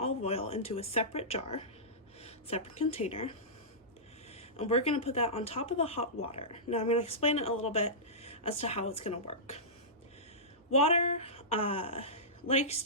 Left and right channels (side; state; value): both; normal; correlation -0.17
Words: oil into a separate jar, separate container, and we're going to put that on top of the hot water. Now I'm going to explain it a little bit as to how it's going to work. Water likes